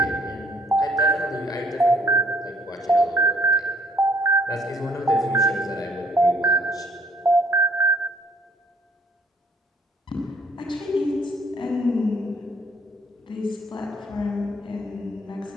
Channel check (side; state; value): both; normal; correlation 0.63